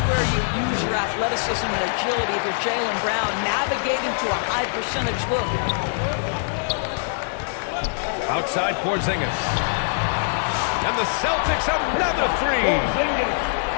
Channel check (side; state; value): right; silent; 63 dB below the other